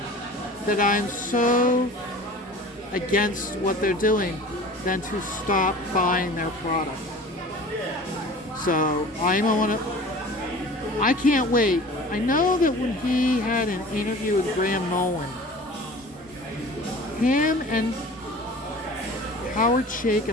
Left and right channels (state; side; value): normal; both; correlation 0.42